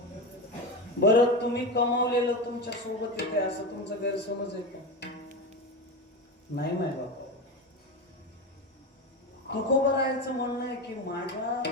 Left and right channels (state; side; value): normal; both; correlation 0.21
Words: बरं, तुम्ही कमावलेलं तुमच्या सोबत येते असं तुमचं गैरसमज आहे का? नाही माय बाबा. तुकोबारायांचं म्हणणं आहे की माझ्या,